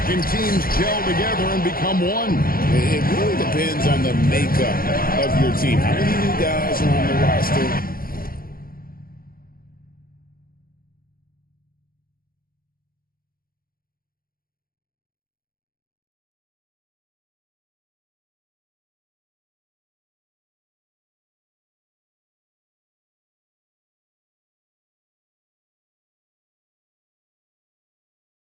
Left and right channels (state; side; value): late; right; 0.42 ms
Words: can teams gel together and become one? It really depends on the makeup of your team. How many new guys are on the roster?